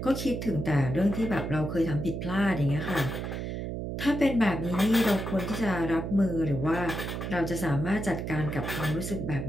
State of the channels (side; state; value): right; noise; hum, 4 dB below the sound